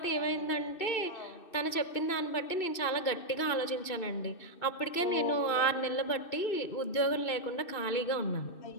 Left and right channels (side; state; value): right; late; 2.6 ms